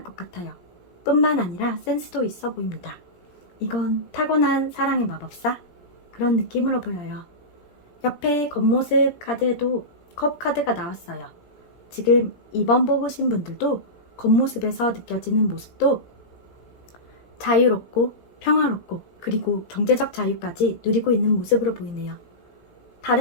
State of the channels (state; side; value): late; right; 17 ms